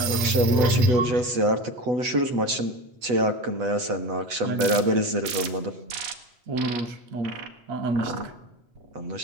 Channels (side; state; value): left; late; 8.1 ms